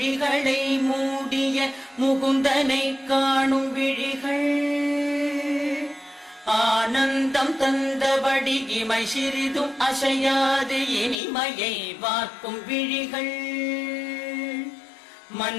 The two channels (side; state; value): right; drops out; at 11.2 s